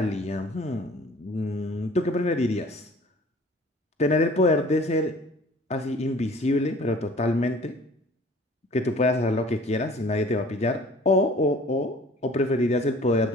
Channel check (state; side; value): normal; both; correlation 0.49